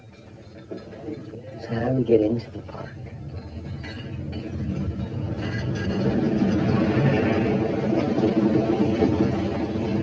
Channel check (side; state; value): both; identical; correlation 1.00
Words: So how do we get into the park?